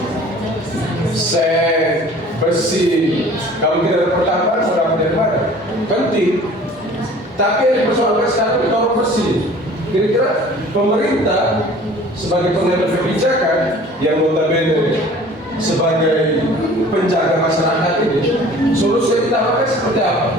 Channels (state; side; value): normal; both; correlation 0.47